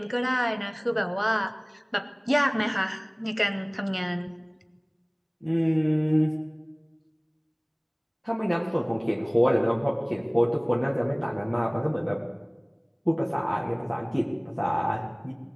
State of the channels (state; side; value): identical; both; correlation 1.00